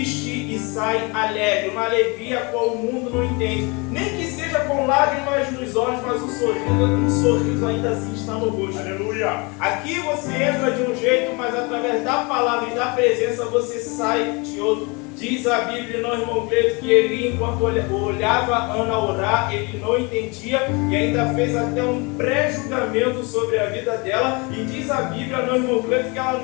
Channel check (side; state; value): right; quieter; 29.0 dB